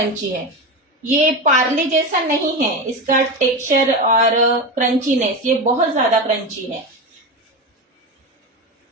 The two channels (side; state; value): both; normal; correlation 0.20